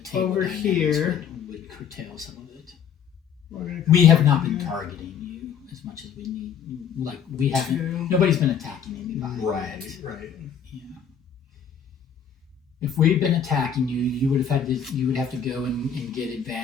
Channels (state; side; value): quieter; right; 7.5 dB